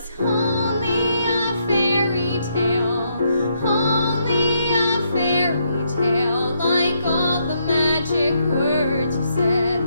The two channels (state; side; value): inverted; both; correlation -0.76